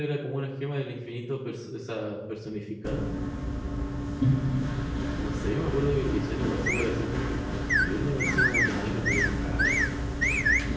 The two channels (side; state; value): both; identical; correlation 1.00